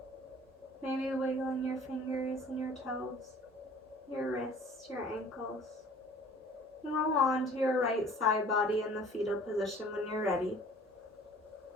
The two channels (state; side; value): normal; both; correlation 0.50